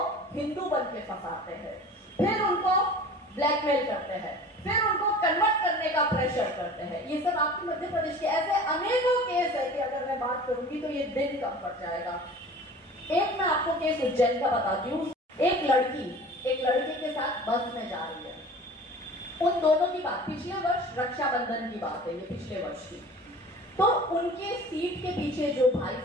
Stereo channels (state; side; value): normal; both; correlation 0.41